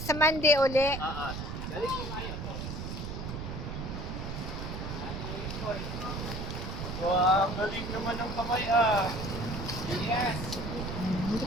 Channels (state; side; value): noise; right; rumble, 6 dB below the sound